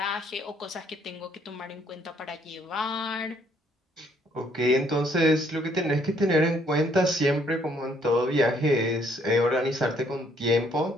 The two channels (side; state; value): both; normal; correlation 0.66